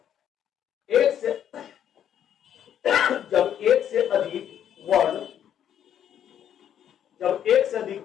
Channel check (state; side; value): quieter; right; 9.8 dB